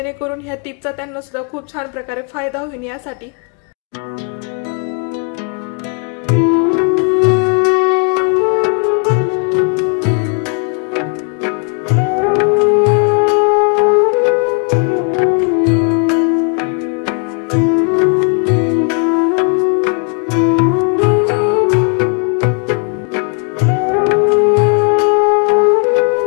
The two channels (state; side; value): quieter; right; 39.7 dB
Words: ह्या टिप्सचा त्यांना सुद्धा खूप छान प्रकारे फायदा होईल यासाठी।